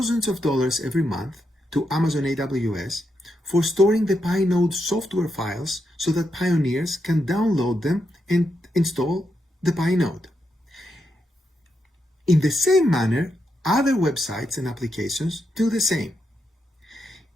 of dollars every month to Amazon AWS for storing the Pi node software files so that pioneers can download them and install the Pi node. In the same manner, other websites and applications do the same.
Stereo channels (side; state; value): both; normal; correlation 0.83